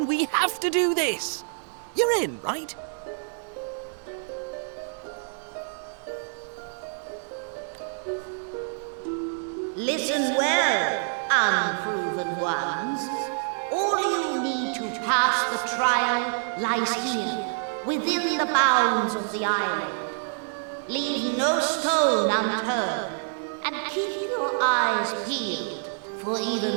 we have to do this. You're in, right? Listen well, unproven ones. All you need to pass the trial lies here, within the bounds of the island. Leave no stone unturned, and keep your eyes peeled for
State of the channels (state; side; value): silent; left; digital silence